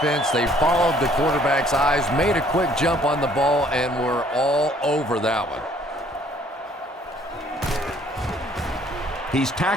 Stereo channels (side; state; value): both; normal; correlation 0.60